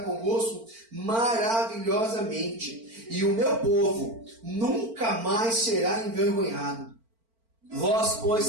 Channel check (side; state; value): left; late; 4.4 ms